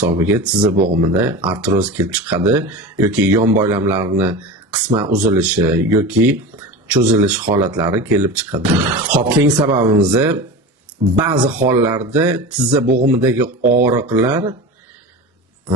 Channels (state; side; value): normal; both; correlation 0.29